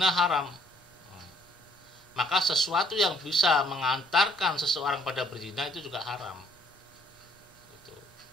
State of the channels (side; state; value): both; normal; correlation 0.65